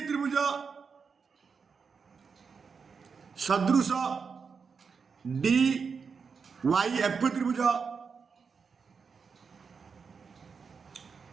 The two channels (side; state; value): left; quieter; 5.6 dB